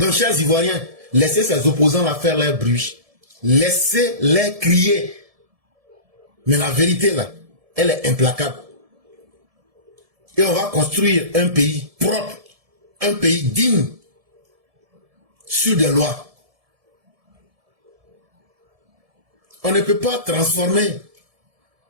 chers Ivoiriens, laissez ces opposants là faire leur bruit. Laissez-les crier. Mais la vérité là, elle est implacable. et on va construire un pays propre, un pays digne, sur des lois. On ne peut pas transformer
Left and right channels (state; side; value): late; left; 1.7 ms